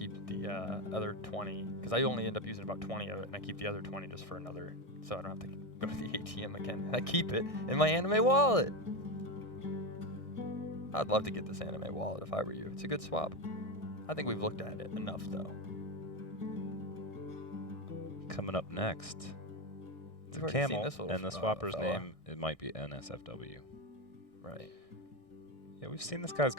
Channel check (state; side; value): late; right; 1.6 ms